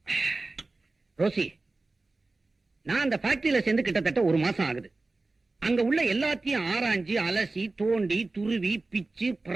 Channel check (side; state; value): left; quieter; 3.4 dB